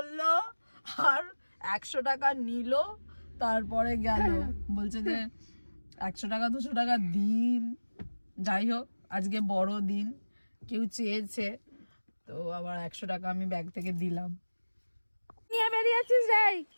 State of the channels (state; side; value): inverted; both; correlation -1.00